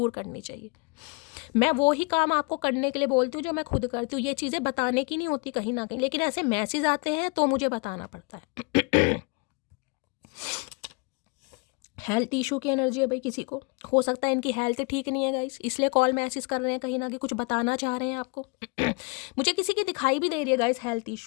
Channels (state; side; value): quieter; right; 31.4 dB